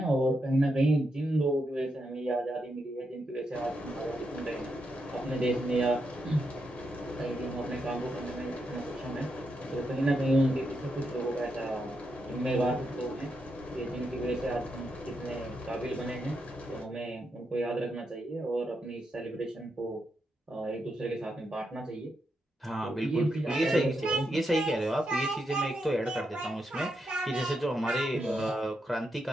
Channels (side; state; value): both; normal; correlation 0.83